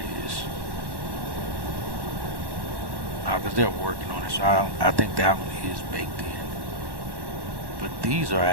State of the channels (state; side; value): late; left; 1.1 ms